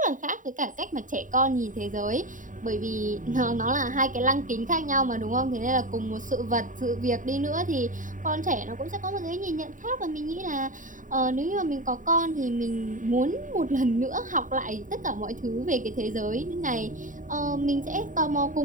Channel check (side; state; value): left; late; 0.38 ms